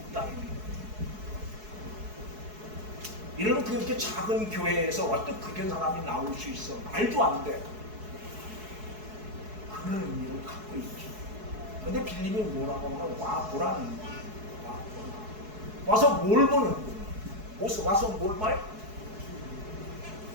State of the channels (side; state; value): left; late; 4.7 ms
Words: 거예요. 이런 그렇게 작은 교회에서 어떤 그런 사람이 나올 수 있어? 말도 안 돼. 그런 의미를 갖고 있죠. 근데 빌립이 뭐라고 하면 와 보라는 거예요. 와 보라. 와서 뭘 보는 거예요? 와서 뭘 봐요?